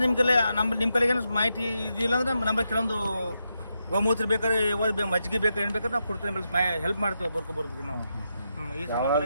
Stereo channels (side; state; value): both; inverted; correlation -0.85